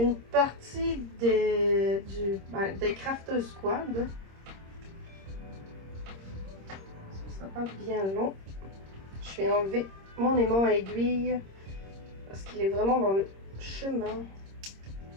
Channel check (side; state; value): left; late; 26 ms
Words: partie des Crafters Squad. Ça sera pas bien long. Je vais enlever mon aimant à aiguille parce qu'il est vraiment dans le chemin.